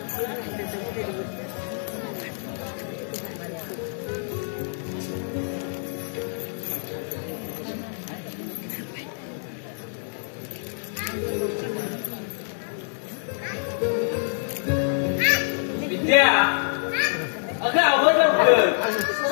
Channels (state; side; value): silent; right; digital silence